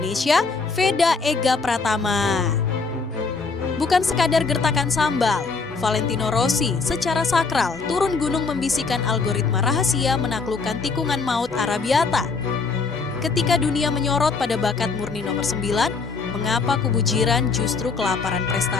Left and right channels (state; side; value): quieter; right; 4.5 dB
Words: Veda Ega Pratama. Bukan sekadar gertakan sambal, Valentino Rossi secara sakral turun gunung membisikkan algoritma rahasia menaklukkan tikungan maut Arabiata. Ketika dunia menyorot pada bakat murni nomor 9, mengapa kubu jiran justru kelaparan